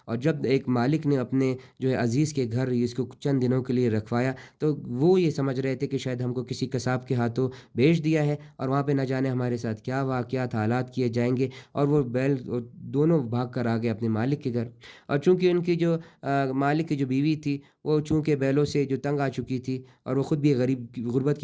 اور جب ایک مالک نے اپنے جو ہے عزیز کے گھر اس کو چند دنوں کے لیے رکھوایا، تو وہ یہ سمجھ رہے تھے کہ شاید ہم کو کسی قصاب کے ہاتھوں بیچ دیا ہے، اور وہاں پہ نہ جانے ہمارے ساتھ کیا واقعات حالات کیے جائیں گے، اور وہ بیل دونوں بھاگ کر آ گئے اپنے مالک کے گھر۔ اور چونکہ ان کی جو مالک کی جو بیوی تھی، وہ چونکہ بیلوں سے جو تنگ آ چکی تھی، اور وہ خود بھی غربت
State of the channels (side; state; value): both; identical; correlation 1.00